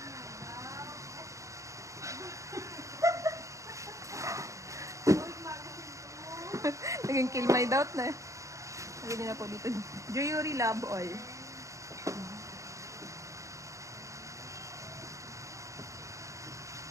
Naging kill my doubt na. Lagyan niyo na po dito. Jewelry Love All.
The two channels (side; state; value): left; late; 0.15 ms